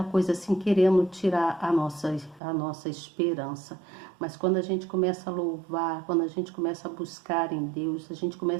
coisa assim, querendo tirar a nossa esperança. Mas quando a gente começa a louvar, quando a gente começa a buscar em Deus, a gente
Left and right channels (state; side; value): drops out; left; at 2.4 s